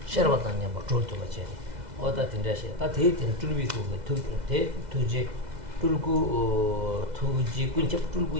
셔바탄냐 뭐 졸토바체 어다 tinda시 다 대tin 줄비고 대 투제 줄고 투지 군첩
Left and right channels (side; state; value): left; late; 2.0 ms